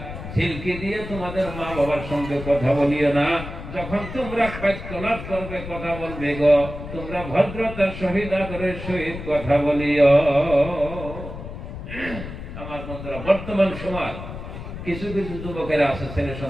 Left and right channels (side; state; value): left; noise; rumble, 10 dB below the sound